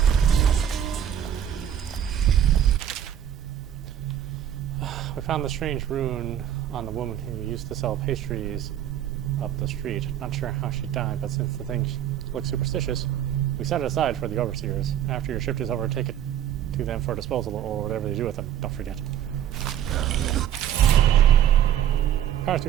We found the strange rune on the woman who used to sell pastries up the street. Not sure how she died, but since the thing looks superstitious, we set it aside for the overseers. After your shift is over, take it to them for disposal or whatever they do with them. Don't forget. Powers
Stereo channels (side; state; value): left; quieter; 10.3 dB